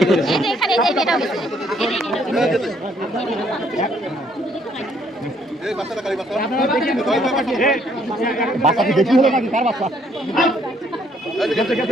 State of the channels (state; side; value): normal; both; correlation 0.67